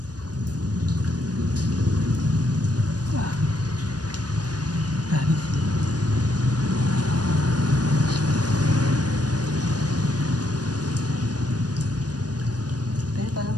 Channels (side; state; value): left; late; 0.69 ms